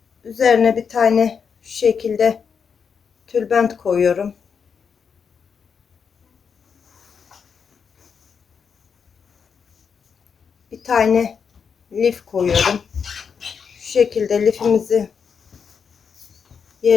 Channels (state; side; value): quieter; right; 6.4 dB